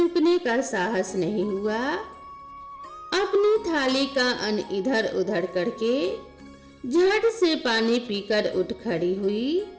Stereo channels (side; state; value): both; identical; correlation 1.00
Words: का साहस नहीं हुआ। अपनी थाली का अन्न इधर उधर करके झट से पानी पीकर उठ खड़ी हुई।